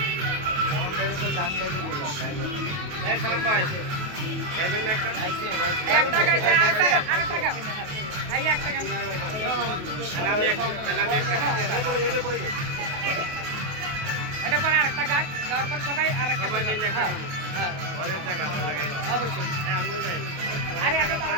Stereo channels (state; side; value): late; left; 28 ms